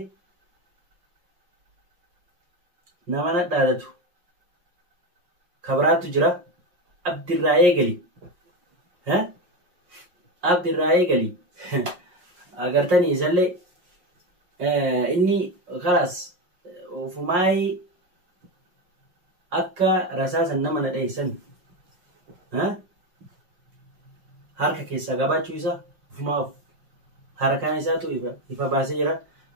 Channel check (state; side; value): late; left; 5.5 ms